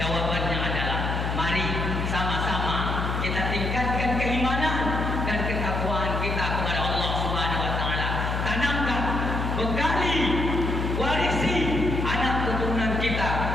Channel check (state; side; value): noise; left; hum, 1 dB below the sound